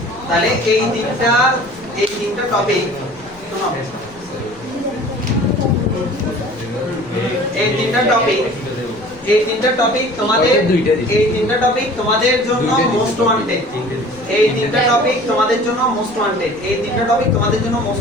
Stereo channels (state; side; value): noise; left; rumble, 23 dB below the sound